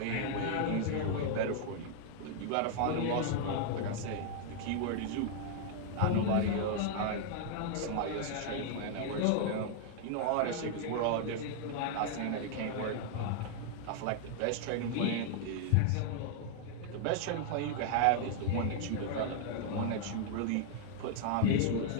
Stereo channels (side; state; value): both; different; correlation 0.00